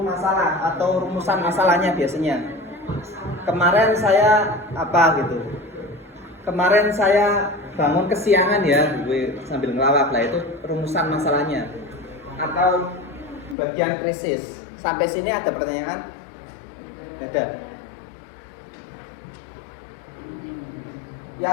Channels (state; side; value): drops out; right; at 13.6 s